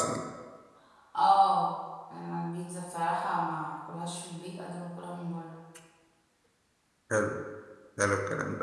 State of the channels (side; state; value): both; identical; correlation 1.00